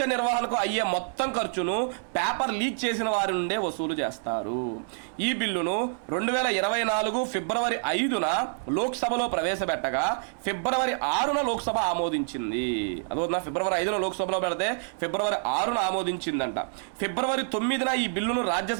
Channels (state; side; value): silent; left; 60 dB below the other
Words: నిర్వహణకు అయ్యే మొత్తం ఖర్చును పేపర్ లీక్ చేసిన వారి నుండే వసూలు చేస్తారు. ఈ బిల్లును 2024 ఫిబ్రవరి 5న లోక్సభలో ప్రవేశపెట్టగా ఫిబ్రవరి 6న లోక్సభ ఆమోదించింది. అదొక ఫిబ్రవరి 5న లోక్సభలో పెడితే ఫిబ్రవరి 6న ఆమోదించిందంట. ఫిబ్రవరి 9న ఈ బిల్లును